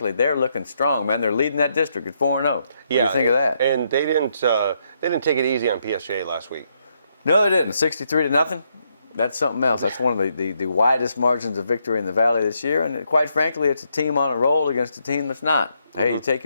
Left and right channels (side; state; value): both; inverted; correlation -0.77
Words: they're looking strong, man. They're leading that district at 4-0. What do you think of that? And they didn't take it easy on PSJ last week. No, they didn't. 63-0. That's something else. That's one of the widest margins of victory in the Valley this year. And quite frankly, it's a team on a roll against a team that's not. Hey, you take